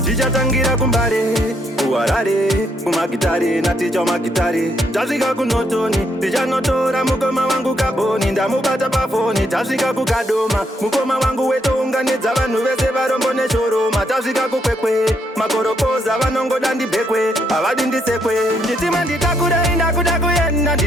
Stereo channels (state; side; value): normal; both; correlation 0.74